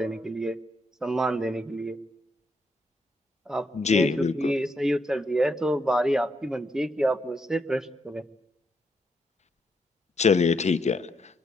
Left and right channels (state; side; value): normal; both; correlation 0.78